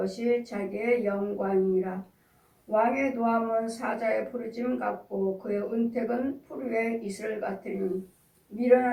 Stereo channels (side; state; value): both; identical; correlation 1.00